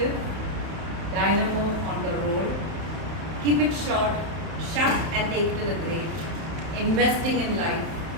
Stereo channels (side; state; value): left; late; 31 ms